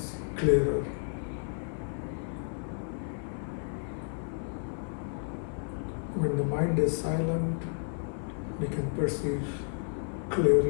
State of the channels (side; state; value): right; silent; 57 dB below the other